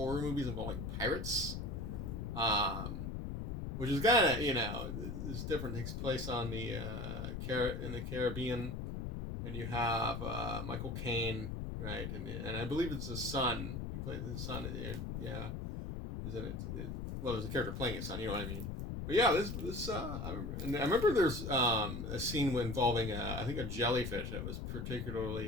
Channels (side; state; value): left; noise; rumble, 4 dB below the sound